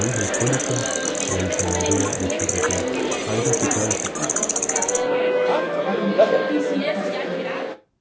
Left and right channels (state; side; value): identical; both; correlation 1.00